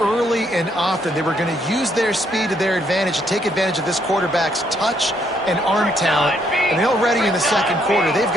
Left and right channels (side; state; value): both; normal; correlation 0.72